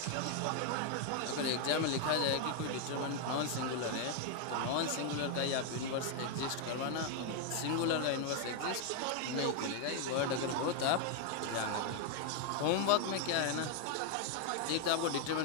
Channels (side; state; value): both; different; correlation 0.00